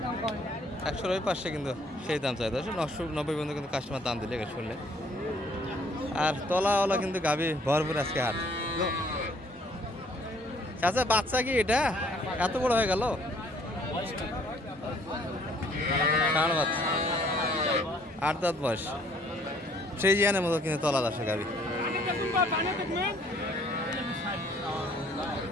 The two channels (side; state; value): both; normal; correlation 0.61